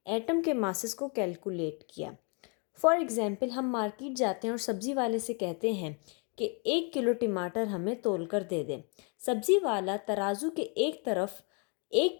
atom के masses को calculate किया. फॉर एग्ज़ाम्पल हम मार्केट जाते हैं और सब्ज़ी वाले से कहते हैं कि 1 किलो टमाटर हमें तोल कर दे दें। सब्ज़ी वाला तराजू के एक तरफ 1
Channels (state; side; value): quieter; right; 35.9 dB